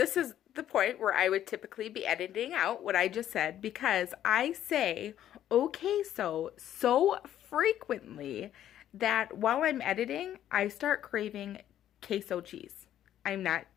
is the point where I would typically be editing out what I just said because I say okay so frequently that while I'm editing, I start craving queso cheese. I'm not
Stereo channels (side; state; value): right; quieter; 11.4 dB